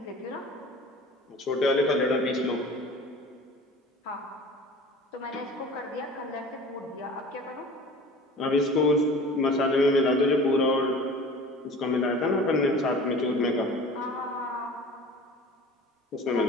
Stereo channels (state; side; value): normal; both; correlation 0.41